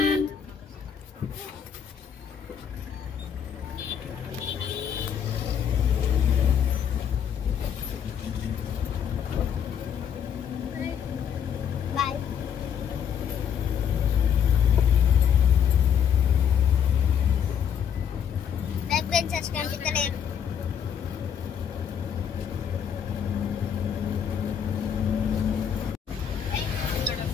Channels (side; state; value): right; quieter; 8.2 dB